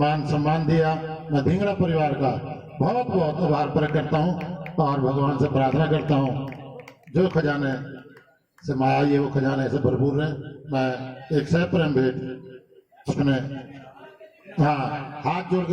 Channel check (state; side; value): identical; both; correlation 1.00